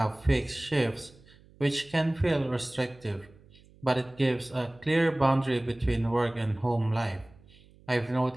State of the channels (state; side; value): noise; right; hum, 26 dB below the sound